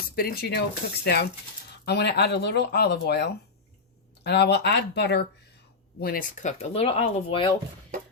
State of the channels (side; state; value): right; quieter; 4.2 dB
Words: spinach cooks down, I'm going to add a little olive oil, and I will add butter when it's cooked. A little olive oil.